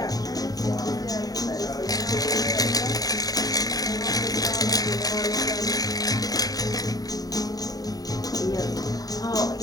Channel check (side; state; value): right; late; 0.18 ms